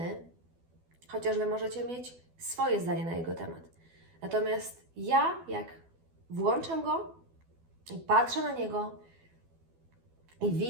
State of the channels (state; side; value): late; left; 12 ms